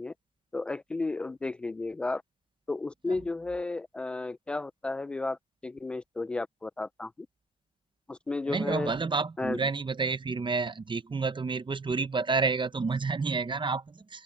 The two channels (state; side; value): normal; both; correlation 0.57